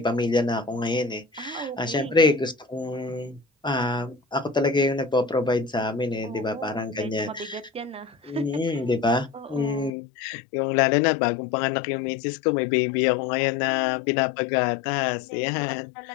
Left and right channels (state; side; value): drops out; right; at 9.9 s